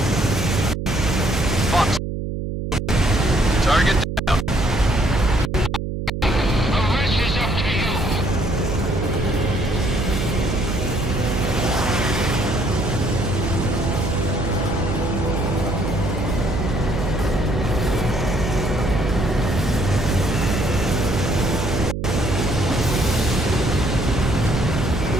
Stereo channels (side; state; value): right; noise; hum, 4 dB below the sound